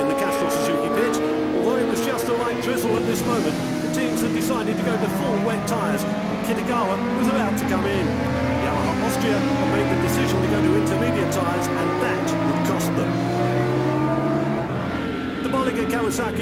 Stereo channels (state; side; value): identical; both; correlation 1.00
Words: the Castrol Suzuki pit. Although it was just a light drizzle at this moment, the teams had decided to go to full wet tyres. Kitagawa was about to come in. Yamaha Austria had made the decision to go to intermediate tyres, and that would cost them. The Bollinger